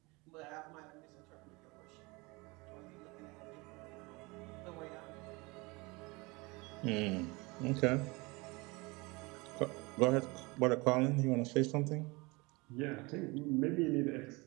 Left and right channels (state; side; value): quieter; left; 25.3 dB